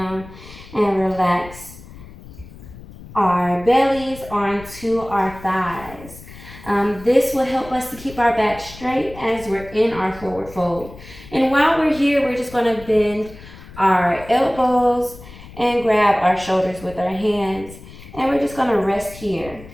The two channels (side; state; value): left; noise; rumble, 17 dB below the sound